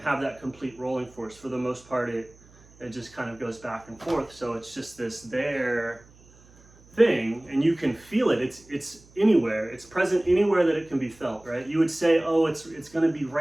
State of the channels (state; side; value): noise; right; hum, 26 dB below the sound